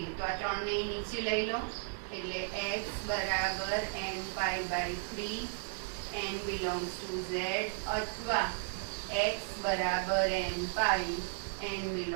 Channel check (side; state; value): left; silent; digital silence